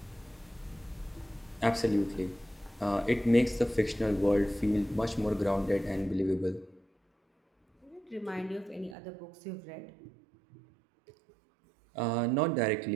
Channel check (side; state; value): left; drops out; at 9.0 s